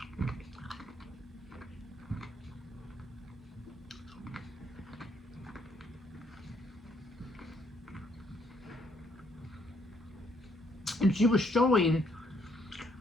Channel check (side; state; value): both; normal; correlation 0.70